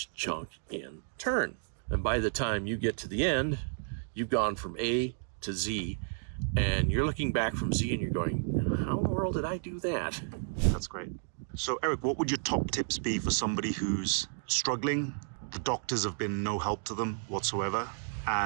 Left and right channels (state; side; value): silent; left; digital silence